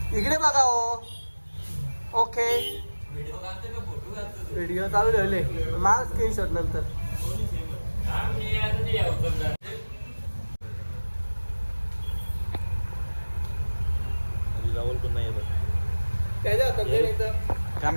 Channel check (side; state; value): both; inverted; correlation -1.00